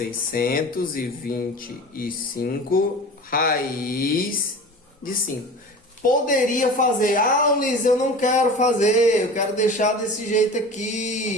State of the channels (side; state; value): both; normal; correlation 0.36